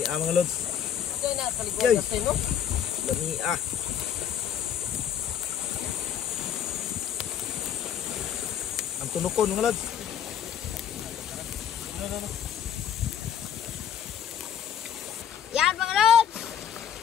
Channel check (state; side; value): quieter; right; 8.9 dB